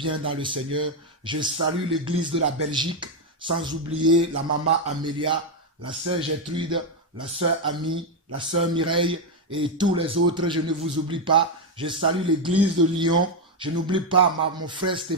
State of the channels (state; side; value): normal; both; correlation 0.05